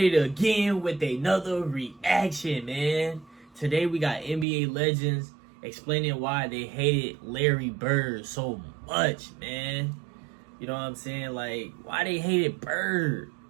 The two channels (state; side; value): drops out; left; at 4.5 s